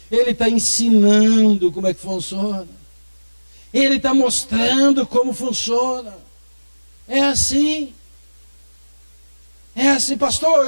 Ele está ensinando como é que funciona. Ele está mostrando como funciona. É assim. É assim, pastor,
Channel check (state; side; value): inverted; both; correlation -1.00